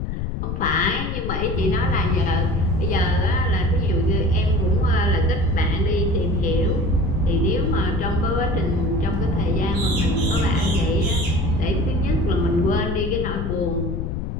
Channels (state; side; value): noise; left; rumble, 3 dB below the sound